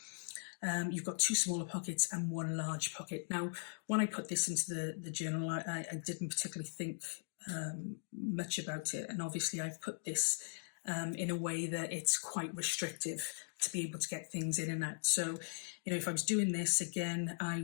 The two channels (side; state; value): right; silent; digital silence